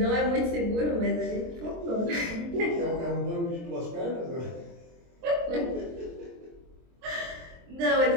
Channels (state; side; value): late; left; 23 ms